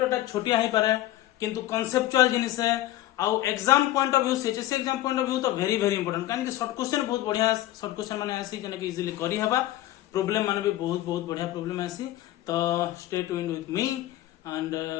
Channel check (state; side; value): quieter; right; 14.7 dB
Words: टा छोटिया ही पारे किंतु कॉन्सेप्चुअल जिनिस है आउ एग्जाम पॉइंट ऑफ व्यू से एग्जाम पॉइंट ऑफ व्यू तो वेरी वेरी इंपोर्टेंट कान कि शॉर्ट क्वेश्चन बहुत बढ़िया शॉर्ट क्वेश्चन माने आसी जने कि इजीली करी हबा प्रॉब्लम माने भी बहुत बहुत बढ़िया प्रॉब्लम आसी तो stay tuned with me and